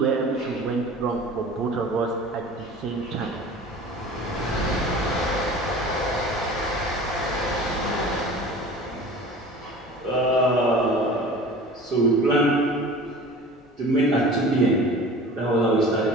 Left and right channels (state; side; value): normal; both; correlation 0.40